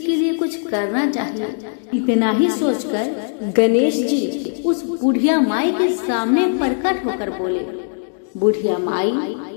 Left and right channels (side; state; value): right; silent; digital silence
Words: लिए कुछ करना चाहिए। इतना ही सोचकर गणेश जी उस बुढ़िया माई के सामने प्रकट होकर बोले, बुढ़िया माई,